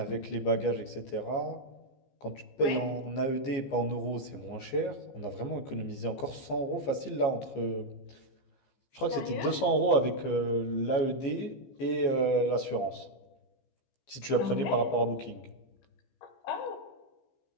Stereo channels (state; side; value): late; right; 15 ms